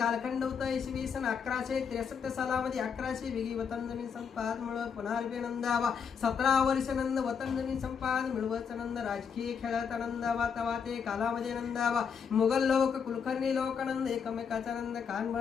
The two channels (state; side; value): quieter; right; 6.7 dB